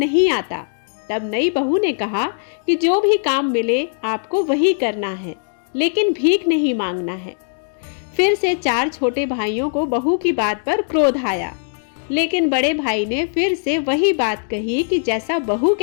आता, तब नई बहू ने कहा कि जो भी काम मिले आपको वही करना है। लेकिन भीख नहीं मांगना है। फिर से 4 छोटे भाइयों को बहू की बात पर क्रोध आया, लेकिन बड़े भाई ने फिर से वही बात कही कि जैसा बहू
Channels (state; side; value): silent; right; digital silence